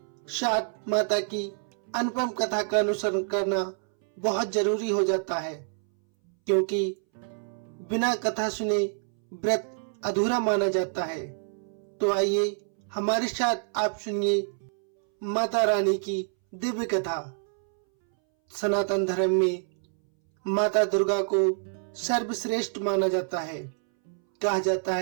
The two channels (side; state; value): left; silent; 60 dB below the other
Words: साथ माता की अनुपम कथा का अनुसरण करना बहुत जरूरी हो जाता है, क्योंकि बिना कथा सुने व्रत अधूरा माना जाता है। तो आइए हमारे साथ आप सुनिए माता रानी की दिव्य कथा। सनातन धर्म में माता दुर्गा को सर्वश्रेष्ठ माना जाता है। कहा जाता